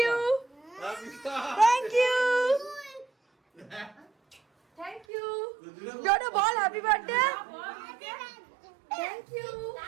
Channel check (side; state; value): left; drops out; at 5.1 s